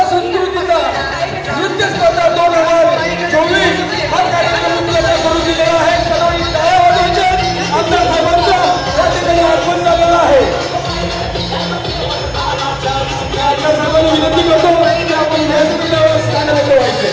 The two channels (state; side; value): identical; both; correlation 1.00